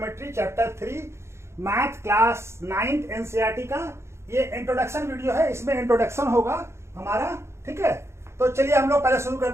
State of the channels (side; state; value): left; late; 0.13 ms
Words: chapter 3 math class 9th NCERT का। ये इंट्रोडक्शन वीडियो है, इसमें इंट्रोडक्शन होगा हमारा। ठीक है, तो चलिए हम लोग पहले शुरू